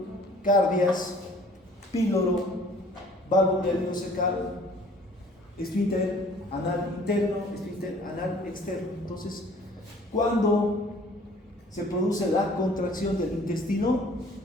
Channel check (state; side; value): normal; both; correlation 0.53